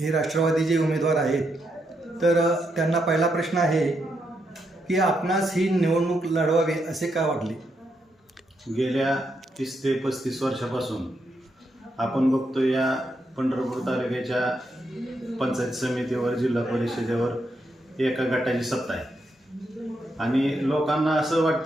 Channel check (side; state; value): both; normal; correlation 0.81